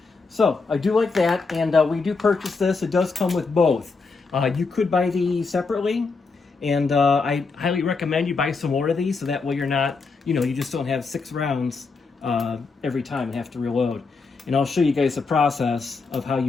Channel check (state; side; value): quieter; right; 4.4 dB